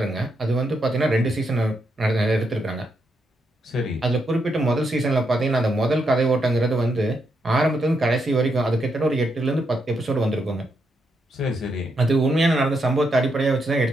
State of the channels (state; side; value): normal; both; correlation 0.80